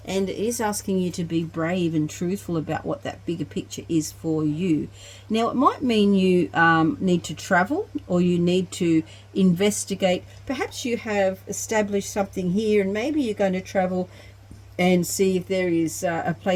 and it is asking you to be brave and truthful about what that bigger picture is for you. Now, it might mean you need to travel, or you need to investigate. Perhaps you have established something here, and maybe you're going to travel and see if there is a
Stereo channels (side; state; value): both; identical; correlation 1.00